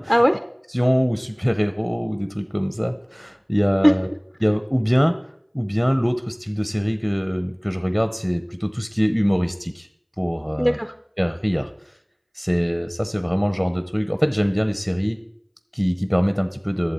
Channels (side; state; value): both; identical; correlation 1.00